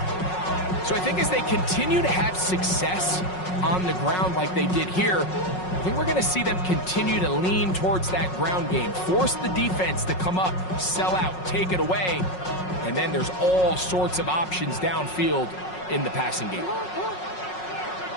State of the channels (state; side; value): late; right; 5.5 ms